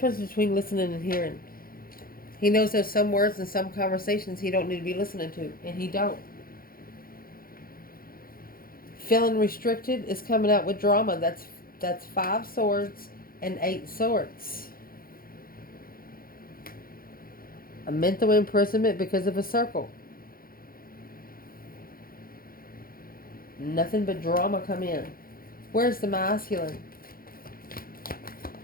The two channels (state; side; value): late; right; 0.42 ms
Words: between listening and hearing. He knows there's some words and some conversations he don't need to be listening to, and he don't. Feeling restricted is coming out with drama. That's 5 swords and 8 swords. A mental imprisonment because of a circle. Nothing but drama come in. Where's the masculine?